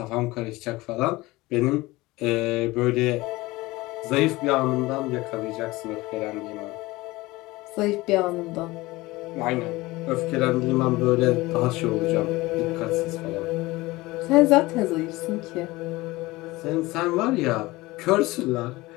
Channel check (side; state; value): right; quieter; 20.5 dB